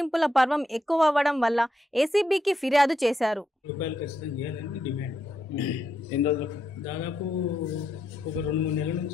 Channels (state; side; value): normal; both; correlation 0.81